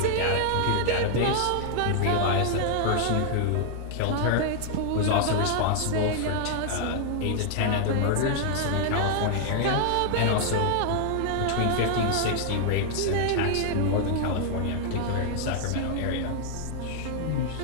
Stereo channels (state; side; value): different; both; correlation 0.00